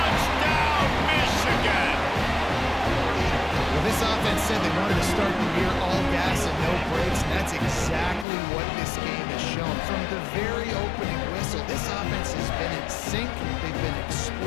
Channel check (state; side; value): drops out; right; at 8.2 s